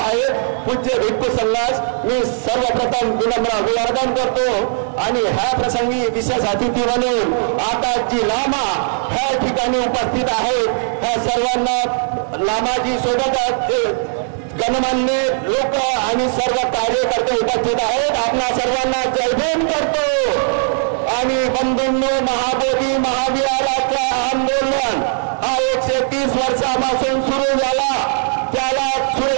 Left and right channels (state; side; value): silent; left; digital silence